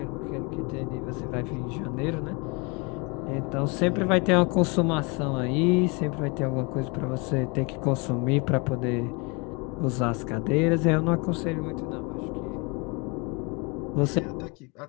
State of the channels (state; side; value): quieter; right; 30.4 dB